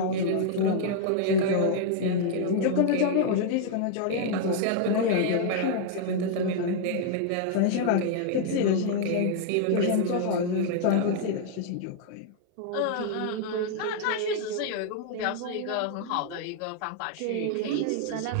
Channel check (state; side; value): different; both; correlation 0.00